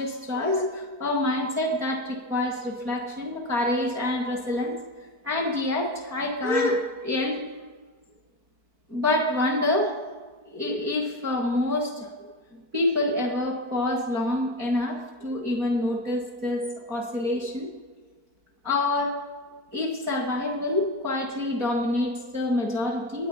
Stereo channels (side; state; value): left; late; 4.6 ms